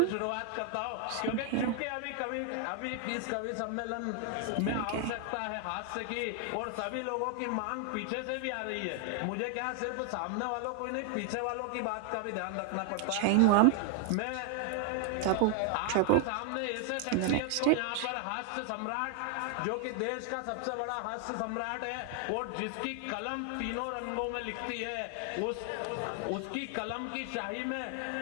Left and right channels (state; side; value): different; both; correlation 0.01